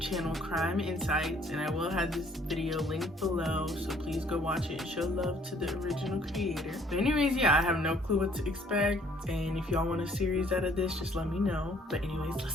Crime Insights, and I will have this video linked below, so please go watch it and show love to the original creator. But anyways, yeah, I have no clue what to expect, and if y'all want a series out of this, just let me know. But anyways,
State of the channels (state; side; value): normal; both; correlation 0.61